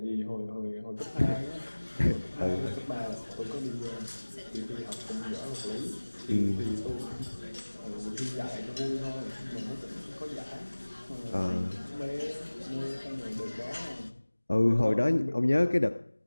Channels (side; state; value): both; inverted; correlation -1.00